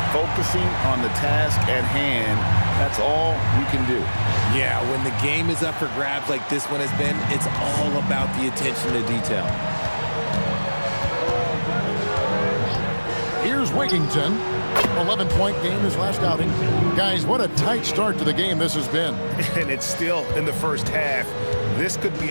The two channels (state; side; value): inverted; both; correlation -1.00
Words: focusing on the task at hand. That's all you can do. Yeah, when the game is up for grabs like this one has been, it's all about the attention to detail. Here's Wigginton. 11-point game his last outing. Guys, what a tight start to the game this has been. And it's still in the first half. This could be